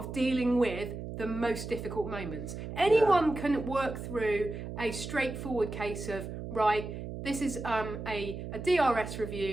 dealing with the most difficult moments. Anyone can work through a straightforward case of, right, this is a DRS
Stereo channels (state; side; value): noise; right; hum, 8 dB below the sound